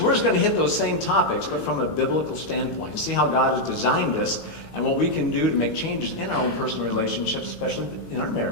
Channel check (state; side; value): late; right; 19 ms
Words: we're just going to hit those same topics, but from a biblical standpoint, and see how God has designed us and what we can do to make changes in our own personal relationships, especially in our